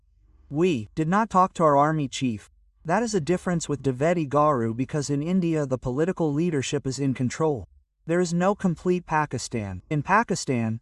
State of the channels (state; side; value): identical; both; correlation 1.00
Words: We did not talk to our army chief. That is a difference with Dwivedi Garu because in India the political leadership is in control. There is no complete Pakistan. In Pakistan,